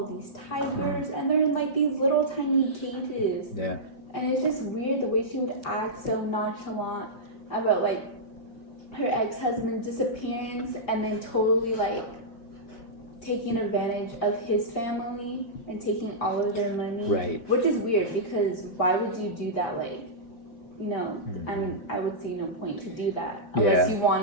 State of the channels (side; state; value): right; late; 4.4 ms